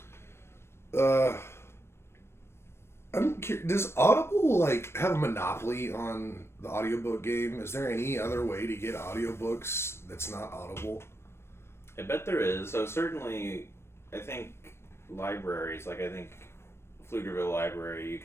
Yeah. I'm curious, does Audible like have a monopoly on the audiobook game? Is there any other way to get audiobooks that's not Audible? I bet there is. So certainly, I think libraries, like I think Pflugerville Library, you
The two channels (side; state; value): right; late; 0.12 ms